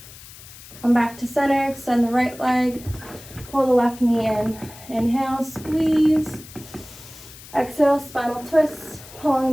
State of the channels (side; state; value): left; noise; hiss, 18 dB below the sound